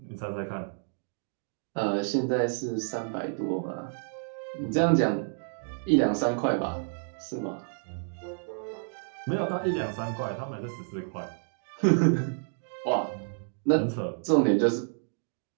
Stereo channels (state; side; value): silent; left; digital silence